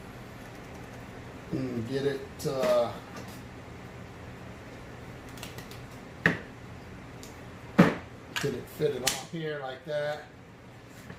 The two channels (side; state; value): both; identical; correlation 1.00